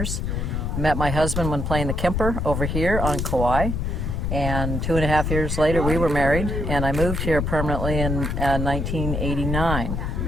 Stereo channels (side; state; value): left; noise; rumble, 1 dB below the sound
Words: Met my husband when playing the Kemper over here on Kauai. And 2.5 years later, we were married, and I moved here permanently in 1989,